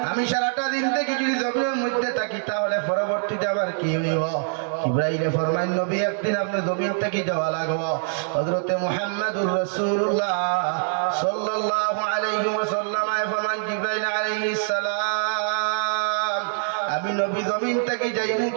আমি সারাটা দিন থেকে যদি জমিনের মধ্যে থাকি তাহলে পরবর্তীতে আবার কি হইব? জিবরাইলে ফরমান নবী একদিন আপনি জমিন থেকে যাওয়া লাগবে। হযরতে মুহাম্মদুর রাসূলুল্লাহ সাল্লাল্লাহু আলাইহি ওয়াসাল্লাম ফরমান জিবরাইল আলাইহিস সালাম আমি নবী জমিন থেকে যাইমু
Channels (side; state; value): left; silent; digital silence